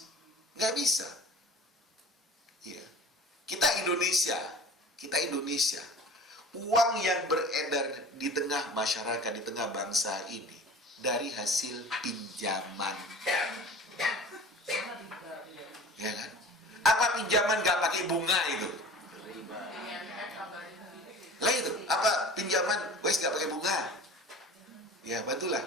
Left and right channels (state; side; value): normal; both; correlation 0.41